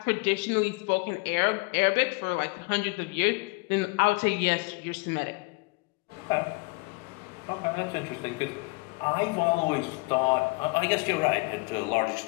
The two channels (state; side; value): quieter; right; 28.0 dB